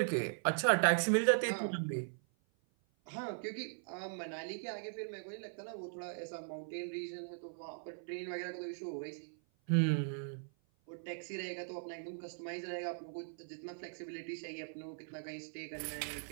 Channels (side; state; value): left; silent; 51 dB below the other